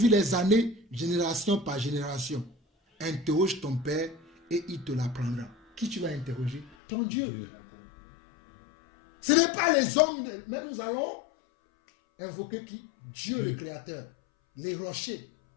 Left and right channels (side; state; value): right; drops out; at 6.8 s